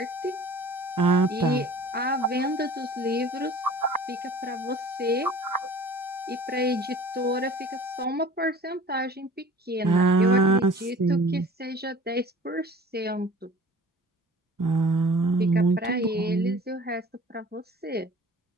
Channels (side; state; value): both; normal; correlation 0.45